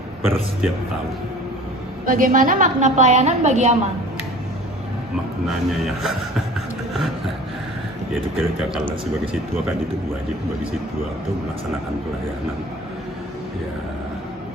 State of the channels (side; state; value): both; normal; correlation 0.44